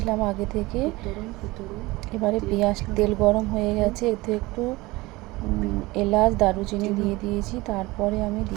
আগে থেকে। এবারে তেল গরম হয়ে গেছে, এতে একটু এলাচ দারুচিনি দিয়ে দিয়েছি, তারপরে আমি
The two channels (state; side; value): quieter; left; 21.1 dB